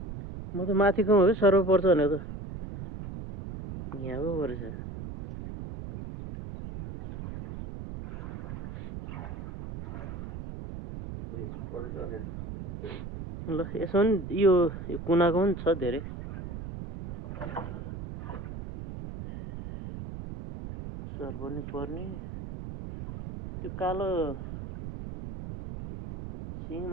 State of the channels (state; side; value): noise; right; rumble, 9 dB below the sound